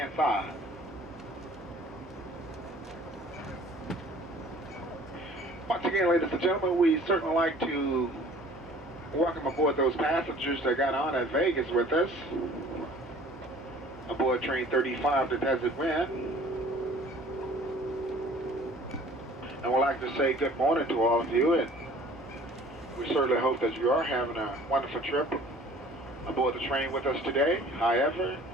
side. Once again, ladies and gentlemen, we certainly like to welcome aboard those passengers that got on at Vegas with us. Aboard train 35 to Desert Wind. And we'd like to say good morning to all of you, and we certainly hope that you are having a wonderful trip aboard the train with us today. However,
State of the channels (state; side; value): normal; both; correlation 0.50